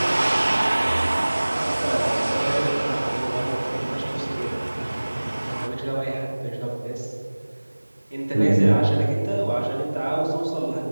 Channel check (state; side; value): inverted; both; correlation -1.00